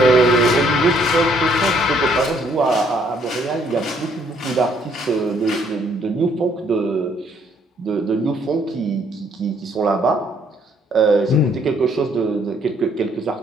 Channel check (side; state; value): both; normal; correlation 0.66